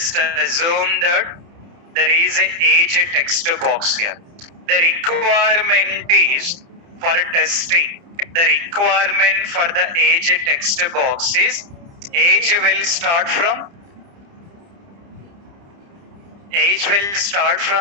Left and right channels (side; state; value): left; late; 30 ms